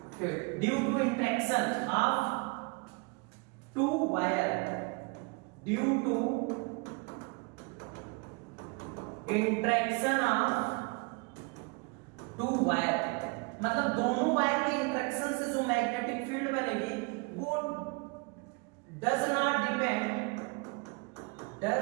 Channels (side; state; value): left; quieter; 31.1 dB